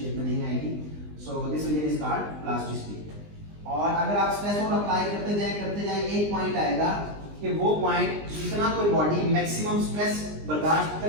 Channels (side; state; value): left; late; 20 ms